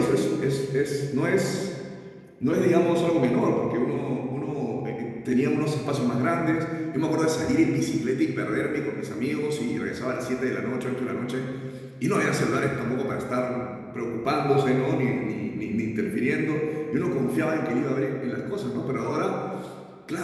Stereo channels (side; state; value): both; identical; correlation 1.00